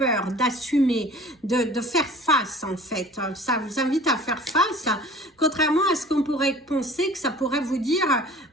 d'assumer, de faire face en fait. Ça vous invite à faire face, contrairement à ce qu'on pourrait penser que ça pourrait vous dire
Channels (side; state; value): both; normal; correlation 0.46